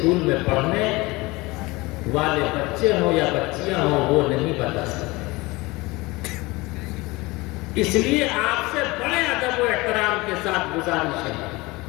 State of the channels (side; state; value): right; quieter; 22.5 dB